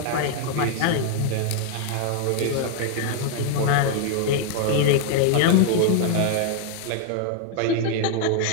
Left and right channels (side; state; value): both; different; correlation 0.00